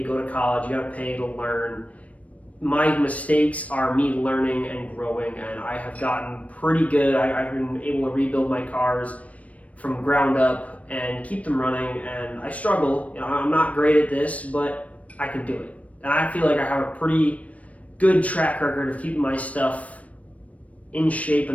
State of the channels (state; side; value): late; right; 0.066 ms